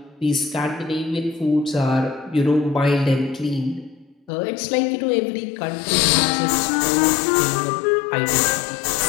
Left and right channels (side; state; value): right; drops out; at 4.3 s